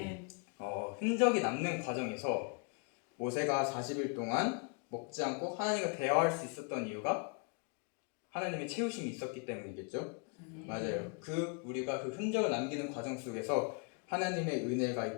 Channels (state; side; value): quieter; right; 35.9 dB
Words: 흔적이 남는 과정에서 모세가 40일 동안 먹지 않고 하나님과 대화할 수 있었던 이유가 하나님의 채우심이 있었기 때문이겠죠. 맞아요. 우리가 그 흔적을 남기는 과정 속에서 하나님의 은혜가